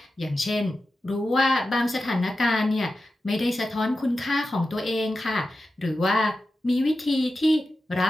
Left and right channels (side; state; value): both; normal; correlation 0.92